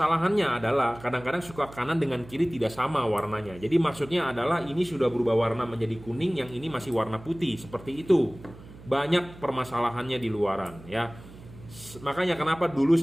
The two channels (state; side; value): noise; right; hum, 19 dB below the sound